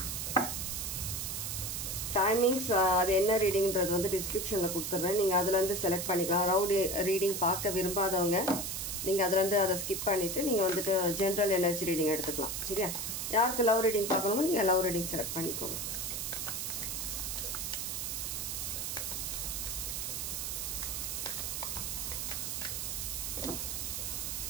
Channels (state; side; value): noise; right; hiss, 3 dB below the sound